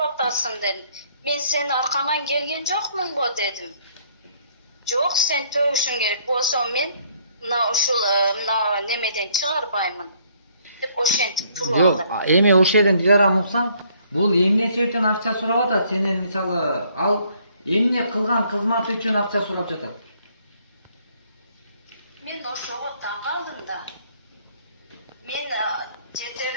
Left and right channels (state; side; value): inverted; both; correlation -0.65